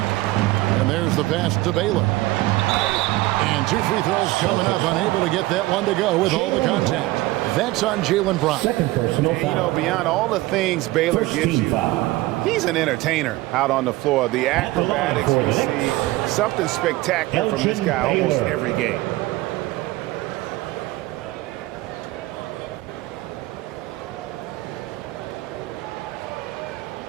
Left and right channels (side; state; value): left; quieter; 18.9 dB